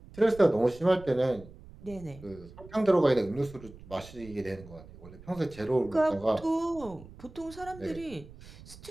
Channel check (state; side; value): noise; right; rumble, 18 dB below the sound